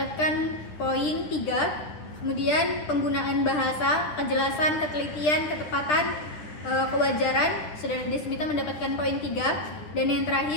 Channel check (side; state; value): right; late; 9.9 ms